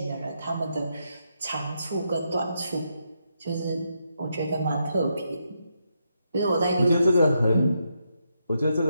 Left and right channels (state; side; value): inverted; both; correlation -0.81